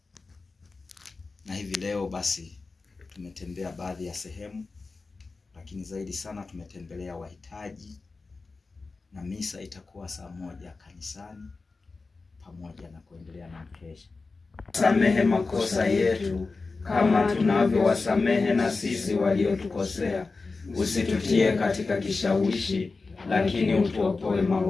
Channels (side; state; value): right; quieter; 4.0 dB